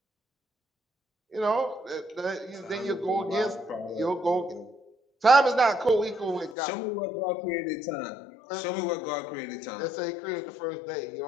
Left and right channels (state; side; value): drops out; right; at 6.6 s